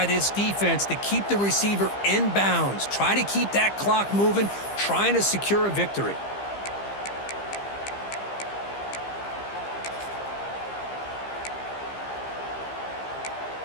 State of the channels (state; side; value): late; right; 15 ms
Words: this defense to keep the receiver in bounds. Try to keep that clock moving, trying to secure a victory.